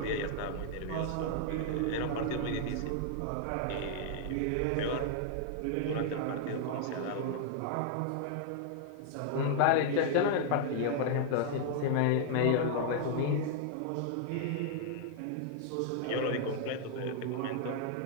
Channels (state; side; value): different; both; correlation 0.00